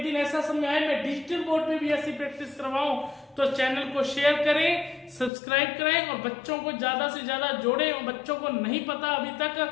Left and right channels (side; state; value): right; drops out; at 5.3 s